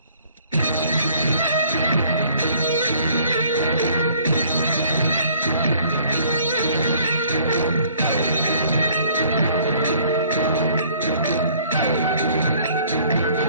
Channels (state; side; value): inverted; both; correlation -0.57